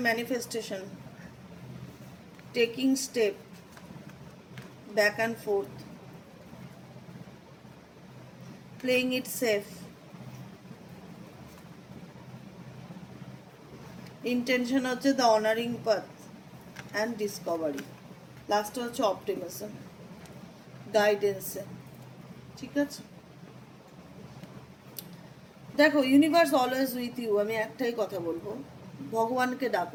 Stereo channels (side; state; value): both; identical; correlation 1.00